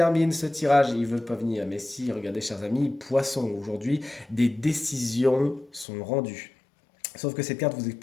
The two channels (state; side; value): drops out; right; at 5.9 s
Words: ce tirage, ils ne veulent pas venir, mais si, regardez chers amis, poisson, aujourd'hui, des décisions sont rendues. Sauf que cette carte vous